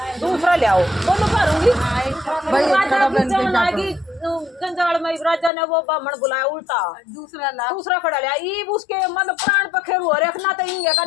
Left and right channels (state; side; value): drops out; right; at 5.5 s